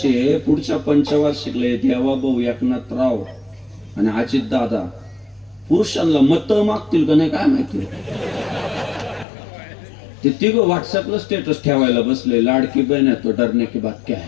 आहे, पुढच्या पंचवार्षिकला देवाभाऊ एकनाथराव आणि अजित दादा पुरुषांना मत मागतील का नाही काय माहिती. ते तिघं व्हॉट्सअपला स्टेटस ठेवायला बसले, लाडकी बहन है तो डरने की बात क्या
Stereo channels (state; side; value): drops out; right; at 9.2 s